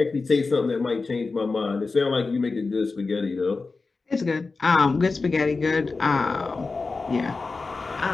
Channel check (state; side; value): quieter; right; 4.0 dB